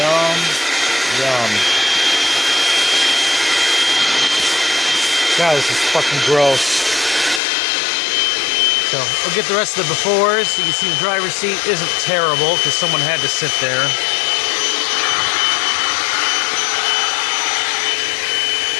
yum. God, this is fucking gross. So, we'll get the rest of the befores. You can see the driver's seat isn't terrible because someone had to sit there.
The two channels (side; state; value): right; drops out; at 7.4 s